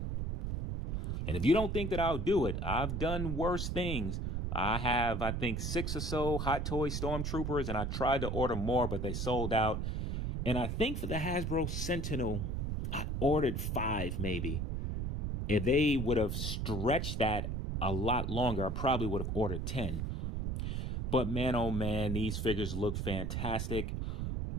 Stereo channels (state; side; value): noise; right; rumble, 2 dB below the sound